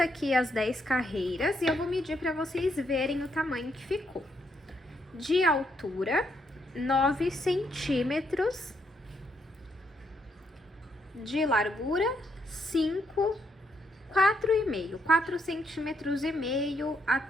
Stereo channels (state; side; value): normal; both; correlation 0.76